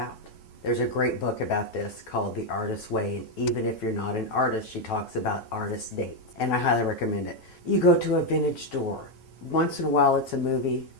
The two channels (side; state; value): right; late; 9.1 ms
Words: There's a great book about this called The Artist's Way, and even if you're not an artist, she talks about artist dates, and I highly recommend it. You go to a vintage store. Once in a while it's a movie,